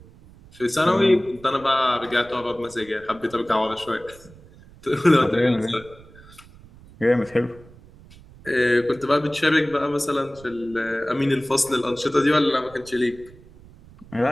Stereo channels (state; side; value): noise; right; rumble, 23 dB below the sound